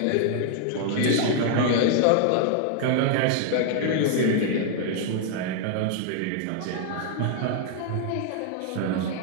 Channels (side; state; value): both; different; correlation 0.00